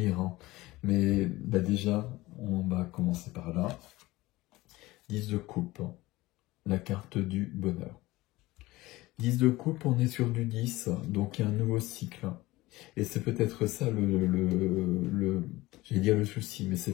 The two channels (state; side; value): quieter; right; 19.2 dB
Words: Hein. Mais déjà, on va commencer par là. 10 de coupe, hein. La carte du bonheur. 10 de coupe, on est sur du 10, donc il y a un nouveau cycle. Et c'est peut-être ça j'allais dire le souci, mais c'est